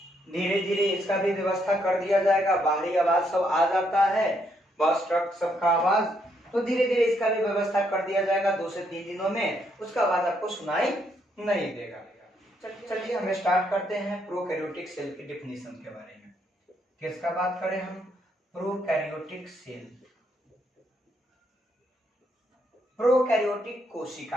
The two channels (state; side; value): normal; both; correlation 0.74